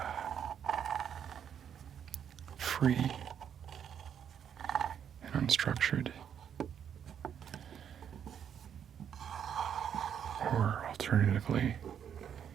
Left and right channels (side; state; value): left; quieter; 8.6 dB